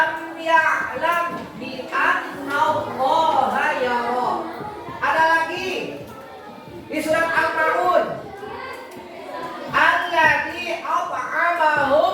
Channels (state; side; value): identical; both; correlation 1.00